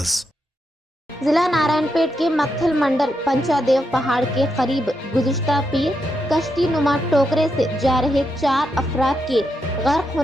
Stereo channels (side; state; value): both; normal; correlation 0.83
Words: जिला नारायणपेट के मक्खल मंडल पंचादेव पहाड़ के करीब गुज़िश्ता पीर कश्ती नुमा टोकरे से जा रहे 4 अफराद के गर्क